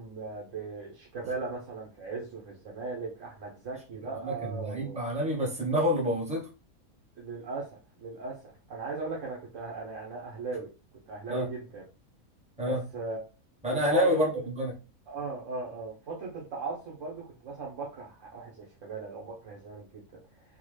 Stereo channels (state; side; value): normal; both; correlation 0.02